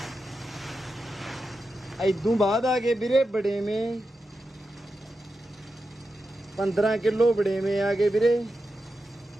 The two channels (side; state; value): both; normal; correlation 0.89